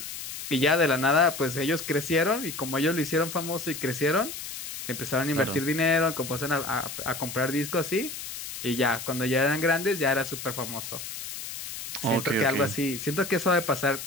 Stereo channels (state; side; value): noise; left; hiss, 8 dB below the sound